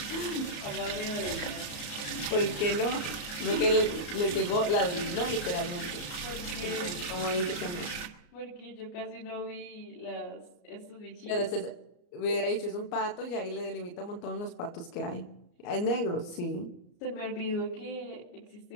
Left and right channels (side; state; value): right; late; 34 ms